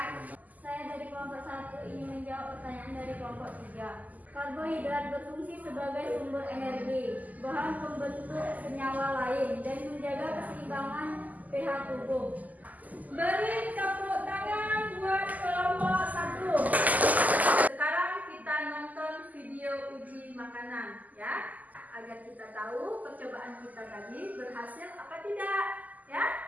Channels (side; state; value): left; late; 0.079 ms